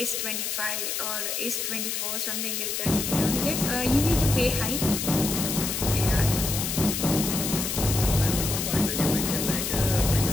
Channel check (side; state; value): left; noise; hiss, 2 dB below the sound